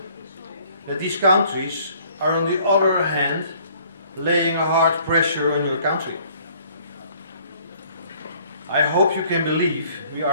that these countries are on the other hand laying a hard pressure on your country. I hope you can believe we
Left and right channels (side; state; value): both; inverted; correlation -0.59